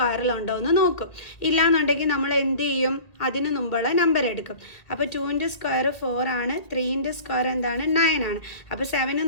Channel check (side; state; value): right; late; 2.1 ms